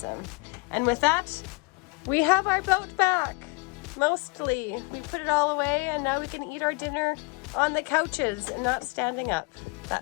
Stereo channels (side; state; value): right; quieter; 28.8 dB